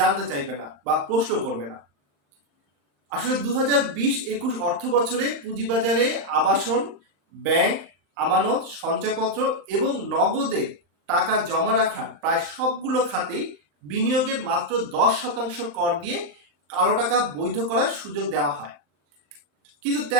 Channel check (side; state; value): left; late; 35 ms